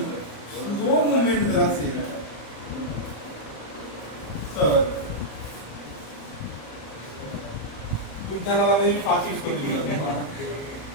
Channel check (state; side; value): late; right; 34 ms